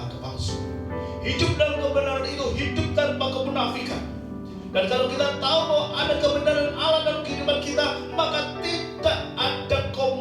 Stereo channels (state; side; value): identical; both; correlation 1.00